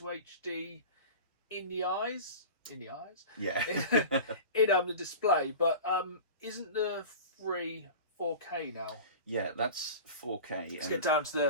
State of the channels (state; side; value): inverted; both; correlation -0.34